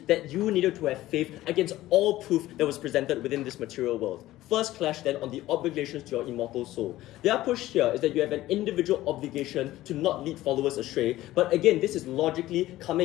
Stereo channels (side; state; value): right; quieter; 15.8 dB